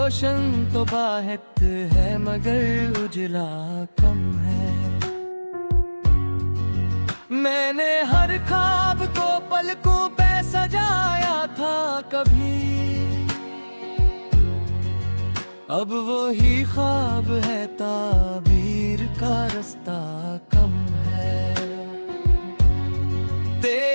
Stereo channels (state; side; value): inverted; both; correlation -1.00